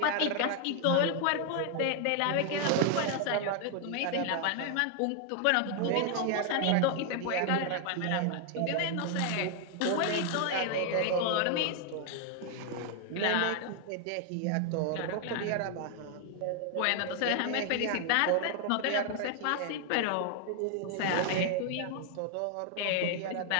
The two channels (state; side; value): different; both; correlation 0.00